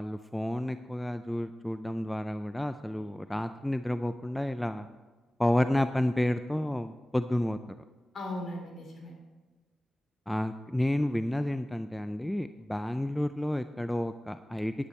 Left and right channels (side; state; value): both; normal; correlation 0.98